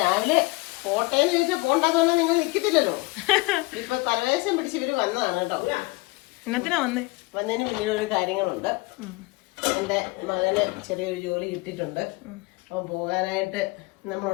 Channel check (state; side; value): quieter; right; 24.1 dB